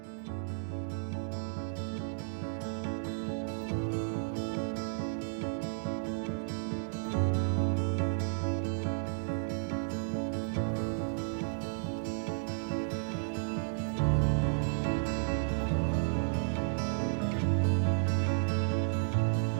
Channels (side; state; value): left; silent; digital silence